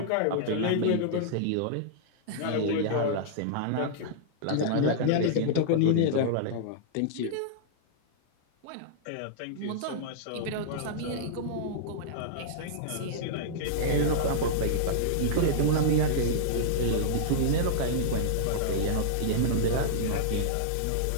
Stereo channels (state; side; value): different; both; correlation -0.02